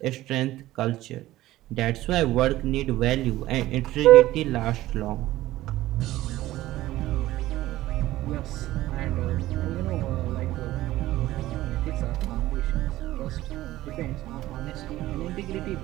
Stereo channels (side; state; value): left; quieter; 15.9 dB